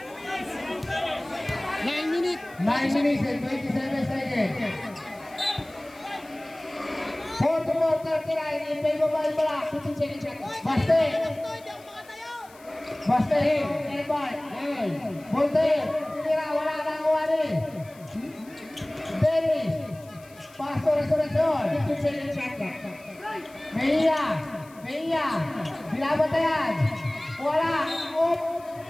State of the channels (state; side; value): noise; left; hiss, 25 dB below the sound